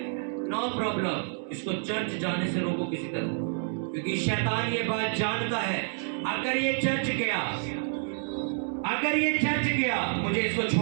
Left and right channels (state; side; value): silent; left; 59 dB below the other